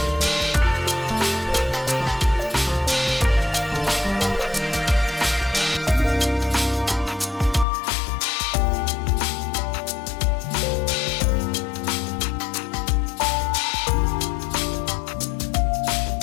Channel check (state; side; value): drops out; right; at 7.7 s